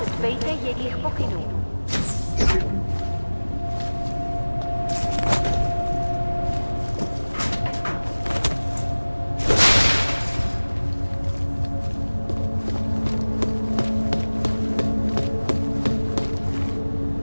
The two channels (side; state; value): both; inverted; correlation -1.00